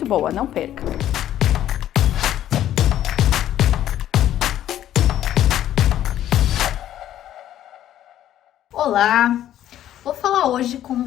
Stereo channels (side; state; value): right; quieter; 11.9 dB